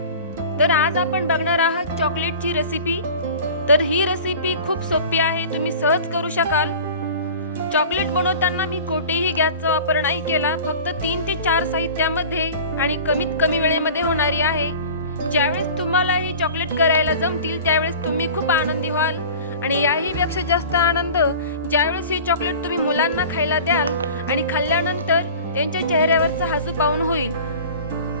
तर आज आपण बघणार आहात चॉकलेटची रेसिपी. तर ही रेसिपी खूप सोपी आहे, तुम्ही सहज करू शकाल. चॉकलेट बनवताना मी कोठेही गॅसचा वापर नाही केला, फक्त 3 ते 4 साहित्यामध्ये आणि कमीत कमी वेळेमध्ये होणारी आहे. ज्यावेळेस तुम्हाला ही चॉकलेट करायला जमतील त्यावेळेस तुम्ही खूप आनंदी व्हाल आणि याहीपेक्षा जास्त आनंद ज्यावेळेस ही चॉकलेट तुम्ही मुलांना खायला द्याल आणि खाल्ल्यानंतर त्यांच्या चेहऱ्यावरचा हसू पाहून होईल.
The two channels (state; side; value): inverted; both; correlation -0.39